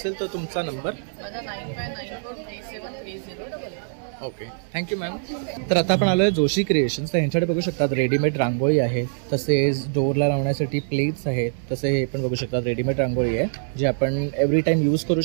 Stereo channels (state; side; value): silent; left; digital silence